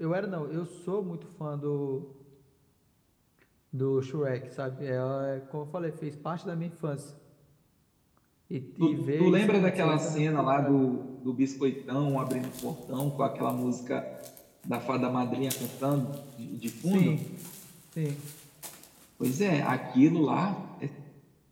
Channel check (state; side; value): identical; both; correlation 1.00